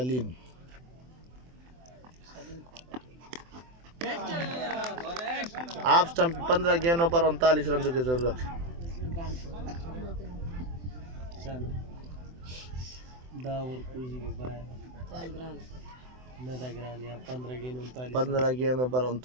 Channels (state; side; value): late; left; 24 ms